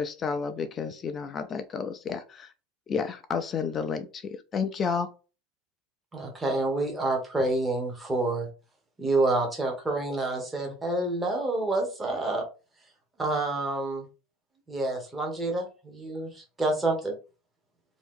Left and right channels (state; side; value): normal; both; correlation 0.61